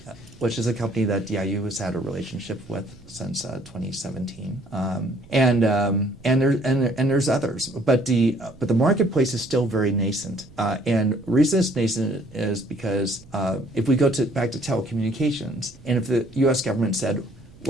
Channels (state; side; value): noise; right; rumble, 23 dB below the sound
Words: which is a company that DIU has had a relationship with since 2017, and there's others, but the marketplace is still very nascent, and the reason it's nascent is because if we go back to telecommunications, and if the U.S. government said